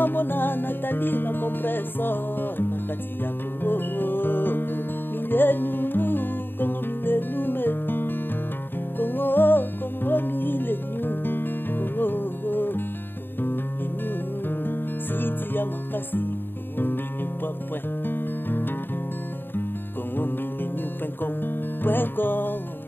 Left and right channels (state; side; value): late; right; 0.097 ms